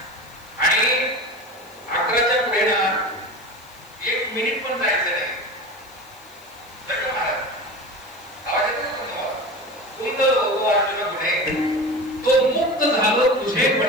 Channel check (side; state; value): left; noise; hiss, 26 dB below the sound